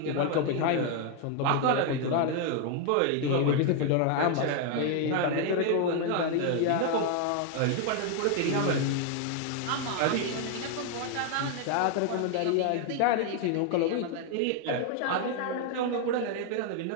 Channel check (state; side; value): different; both; correlation 0.00